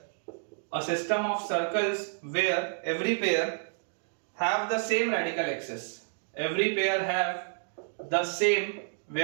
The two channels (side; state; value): left; silent; digital silence